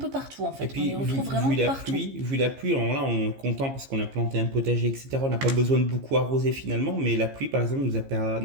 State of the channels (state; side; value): late; left; 15 ms